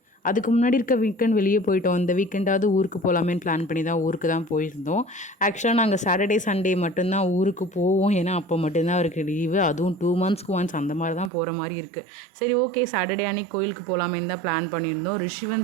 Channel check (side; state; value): left; drops out; at 11.3 s